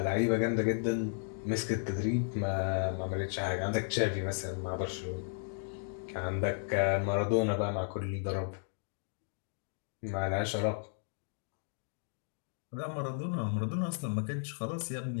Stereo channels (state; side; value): silent; right; digital silence